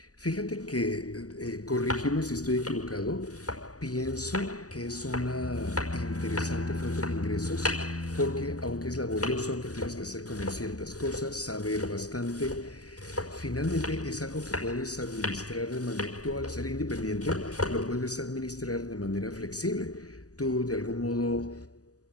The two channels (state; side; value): late; right; 0.67 ms